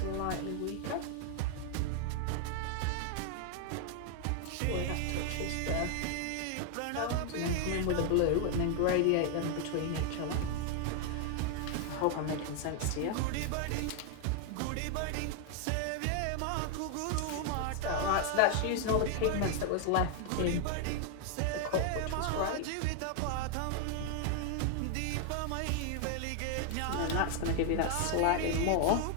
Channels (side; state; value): both; different; correlation 0.00